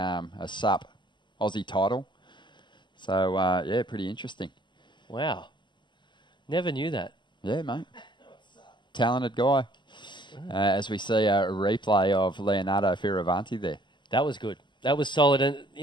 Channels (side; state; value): right; late; 0.22 ms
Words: SUP Aussie title. So, yeah, pretty interesting. Wow. Never knew that. Yeah, mate. Talented guy. As we see a replay of Leonardo Fioravanti there. That was good. That was solid. And,